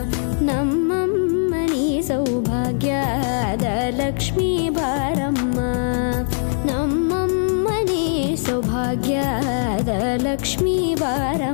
ನಮ್ಮಮ್ಮನಿ ಸೌಭಾಗ್ಯದ ಲಕ್ಷ್ಮೀ ಬಾರಮ್ಮ, ನಮ್ಮಮ್ಮನಿ ಸೌಭಾಗ್ಯದ ಲಕ್ಷ್ಮೀ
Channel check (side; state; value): right; silent; 65 dB below the other